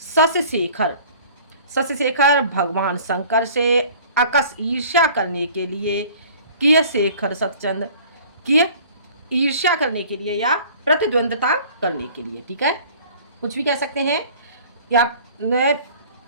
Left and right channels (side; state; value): both; inverted; correlation -0.49